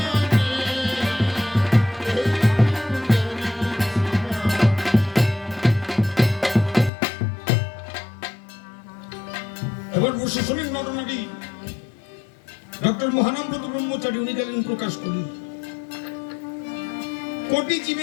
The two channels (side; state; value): right; drops out; at 6.9 s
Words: এবার বসে শোনেন ঘটনাটি। ডক্টর মহানন্দ ব্রহ্মচারী উনি গেলেন প্রকাশ করি, কোটি